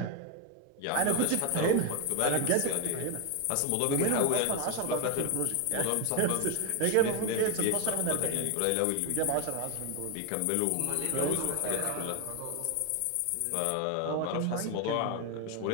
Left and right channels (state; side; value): different; both; correlation 0.01